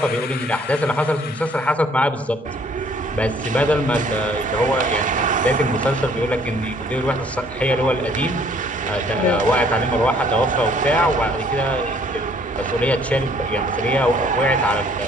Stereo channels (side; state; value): both; normal; correlation 0.60